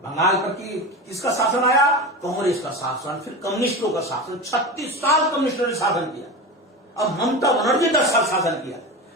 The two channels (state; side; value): normal; both; correlation 0.25